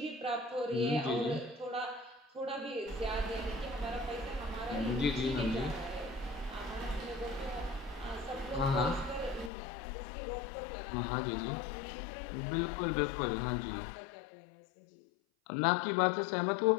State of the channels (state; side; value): drops out; right; at 9.5 s